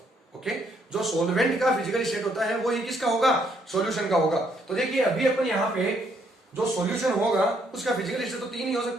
ओके, जो सॉल्वेंट का फिजिकल स्टेट होता है वो ही किसका होगा? सॉल्यूशन का होगा। तो देखिए, अभी अपन यहां पे जो सॉल्यूशन होगा उसका फिजिकल स्टेट तो तीन ही हो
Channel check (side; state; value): both; normal; correlation 0.71